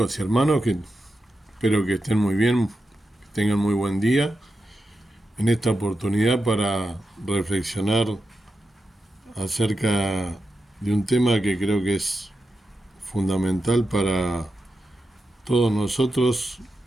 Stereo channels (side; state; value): both; normal; correlation 0.89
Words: y hermanos, que espero que estén muy bien, que tengan muy buen día en esta oportunidad para reflexionar acerca de un tema que creo que es fundamental para todos nosotros,